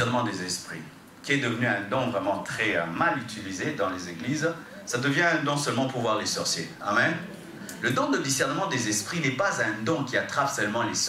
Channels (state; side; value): identical; both; correlation 1.00